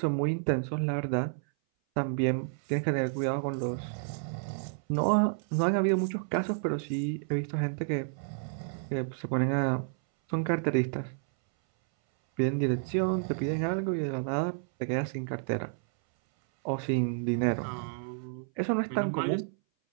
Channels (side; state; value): left; silent; 58 dB below the other